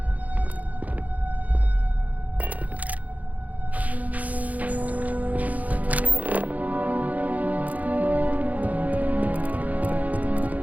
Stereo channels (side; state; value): left; late; 0.075 ms